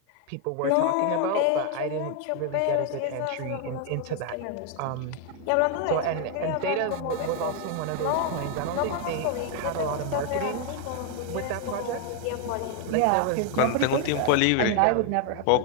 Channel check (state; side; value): different; both; correlation 0.01